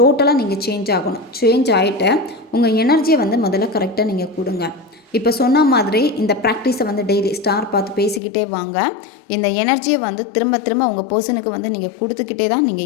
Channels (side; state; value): right; drops out; at 8.2 s